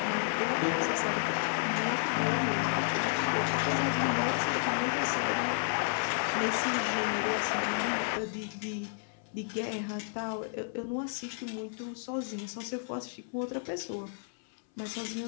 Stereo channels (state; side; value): silent; right; 57 dB below the other